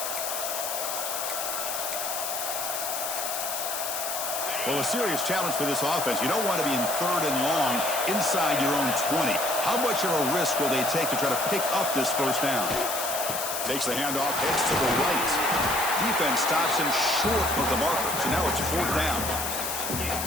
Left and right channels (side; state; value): left; noise; hiss, 3 dB below the sound